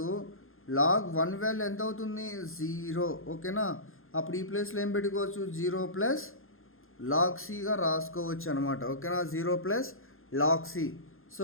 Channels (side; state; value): right; late; 0.60 ms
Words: లాగ్ 1 వాల్యూ ఎంత అవుతుంది, 0, ఓకేనా. అప్పుడు ఈ ప్లేస్లో ఏం పెట్టుకోవచ్చు, 0 ప్లస్ లాగ్ సిగా రాసుకోవచ్చు అనమాట, ఓకేనా, 0 ప్లస్ లాగ్ సి. సో